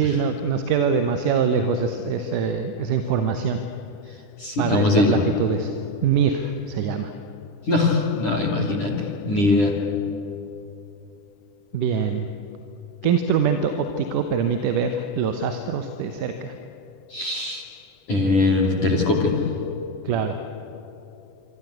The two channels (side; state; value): right; late; 10 ms